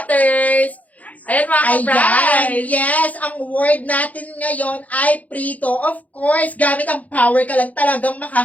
Ayan mga Ayan, ka-prize! yes, ang word natin ngayon ay prito. Of course, gamit ang power ka lang talagang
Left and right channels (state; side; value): late; right; 0.074 ms